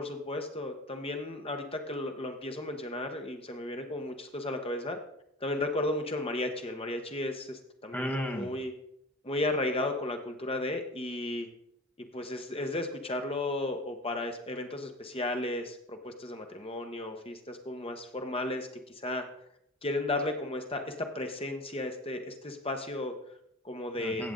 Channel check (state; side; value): normal; both; correlation 0.36